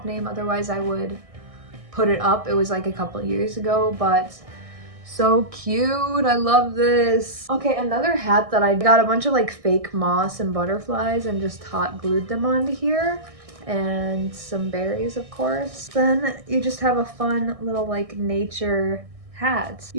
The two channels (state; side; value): late; left; 1.6 ms